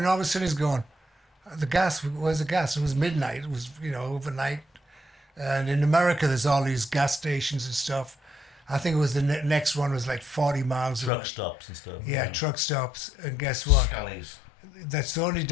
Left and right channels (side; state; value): right; drops out; at 11.1 s